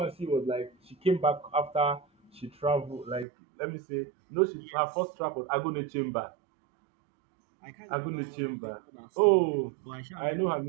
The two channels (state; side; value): drops out; left; at 3.2 s